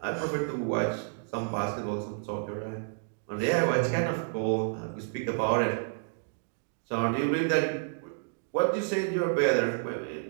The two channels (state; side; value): silent; left; digital silence